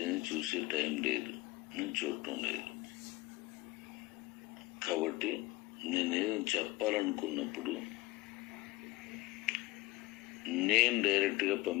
చూసే టైం లేదు, నేను చూడటం లేదు. కాబట్టి నేనేదో చెప్పాలనుకున్నప్పుడు నేను డైరెక్ట్గా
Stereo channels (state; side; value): quieter; right; 20.0 dB